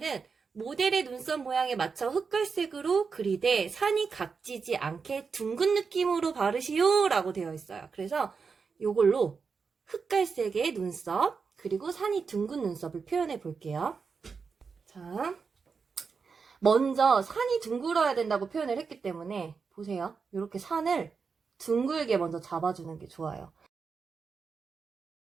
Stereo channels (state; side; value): quieter; left; 5.3 dB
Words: 모델의 눈썹 모양에 맞춰 흑갈색으로 그리되 산이 각지지 않게 둥근 느낌으로 바르시오 라고 되어 있어요. 그래서 이걸로 흑갈색의 눈썹, 그리고 산이 둥근 눈썹을 표현해 볼게요. 자, 먼저 산이 둥글어야 된다고 표현을 했기 때문에 보세요. 이렇게 산을 둥글게 먼저 잡아주는 게 좋아요.